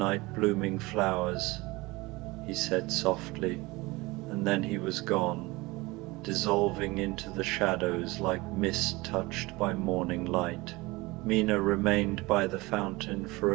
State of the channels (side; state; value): left; quieter; 22.4 dB